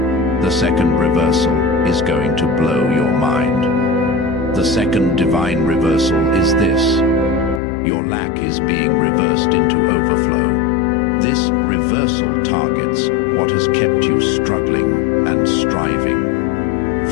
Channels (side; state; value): right; drops out; at 7.6 s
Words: The second reversal is going to blow your mind. The second divine reversal is this: your lack is being reversed into overflow. This reversal targets what has kept you struggling and striving.